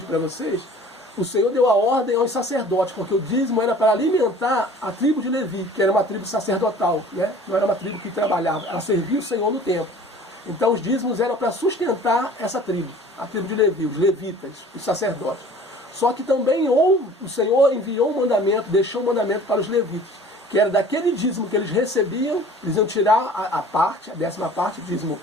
para vocês, o Senhor deu a ordem aos sacerdotes, porque o dízimo era para alimentar a tribo de Levi, que era uma tribo sacerdotal, né? Não era uma tribo que trabalhava, ela servia o Senhor no templo. Então os dízimos eram para sustentar essa tribo, a tribo de Levi, os levitas, os sacerdotes. Só que também o Senhor enviou um mandamento, deixou um mandamento para os levitas, que era daquele dízimo que eles recebiam, eles iam tirar a parte, a 10ª parte, o dízimo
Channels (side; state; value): both; normal; correlation 0.47